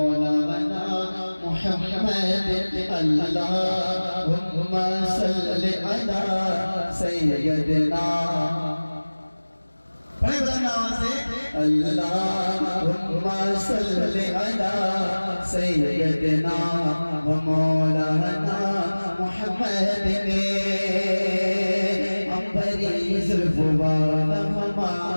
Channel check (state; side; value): inverted; both; correlation -1.00